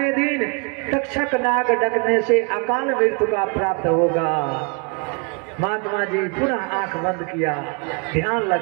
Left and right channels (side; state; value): left; quieter; 34.8 dB